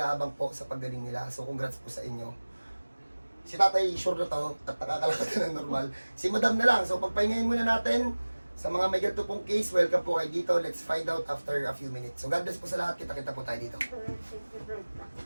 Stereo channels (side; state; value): both; inverted; correlation -1.00